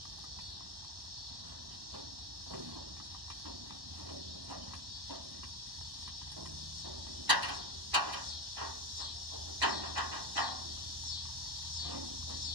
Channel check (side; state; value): left; late; 1.1 ms